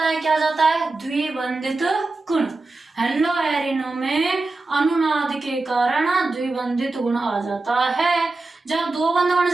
है। क्या जाता है? द्विबंधित गुण। हेलो एरिनो में अनुनाद के कारण द्विबंधित गुण आ जाता है। जब दो बंध बन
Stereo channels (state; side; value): quieter; left; 3.3 dB